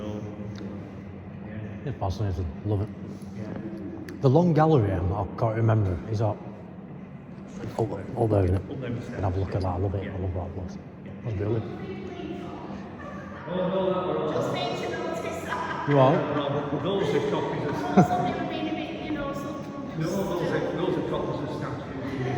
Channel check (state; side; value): identical; both; correlation 1.00